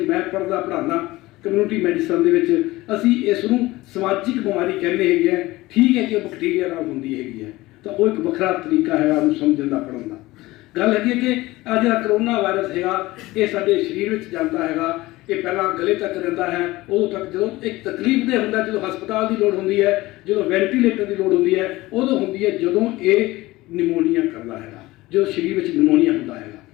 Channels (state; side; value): quieter; right; 19.1 dB